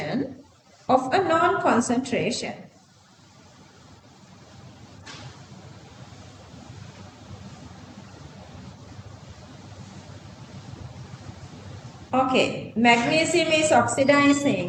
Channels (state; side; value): identical; both; correlation 1.00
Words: of a known concentration. Okay, magnesium is